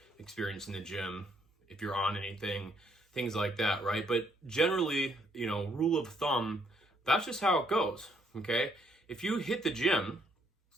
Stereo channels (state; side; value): normal; both; correlation 0.70